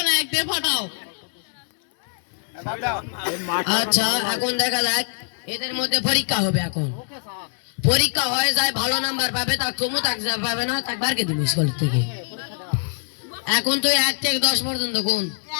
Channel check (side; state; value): right; silent; digital silence